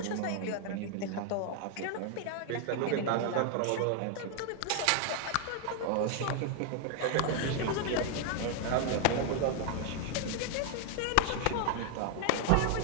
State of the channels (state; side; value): different; both; correlation 0.00